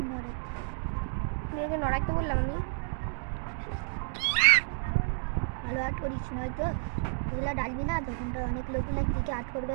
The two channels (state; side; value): silent; left; digital silence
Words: নড়াইতে বললাম আমি। ভালো আট করিস, নয়তো এগুলো ডালবি না, তখন তো অনেক লোকগুলো দিকে আট